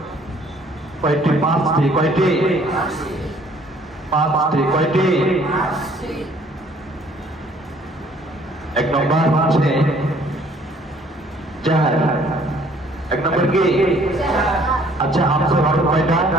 কয়টি? পাঁচটি। কয়টি? পাঁচটি। কয়টি? এক নম্বর হচ্ছে জাহার। এক নম্বর কি? আচ্ছা, হামজার হরফ কয়টা?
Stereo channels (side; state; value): both; normal; correlation 0.59